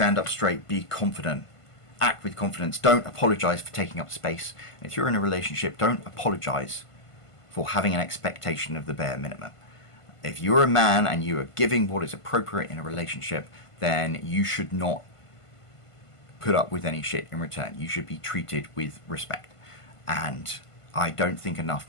up straight, be confident, act with confidence, don't apologize for taking up space. And if you're in a relationship, don't apologize for having an expectation of the bare minimum. If you're a man and you are giving what is appropriate in a relationship, then you should not put up with any shit in return. You should be treated with respect. And I don't think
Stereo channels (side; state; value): right; late; 1.5 ms